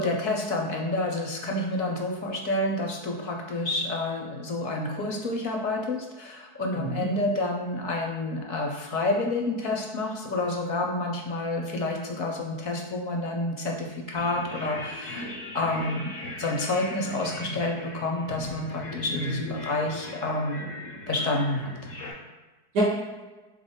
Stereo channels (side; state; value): left; late; 4.6 ms